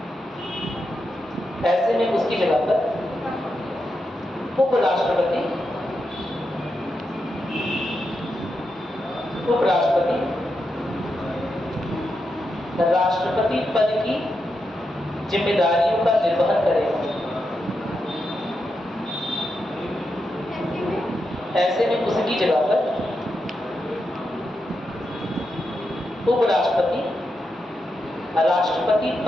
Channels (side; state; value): both; normal; correlation 0.86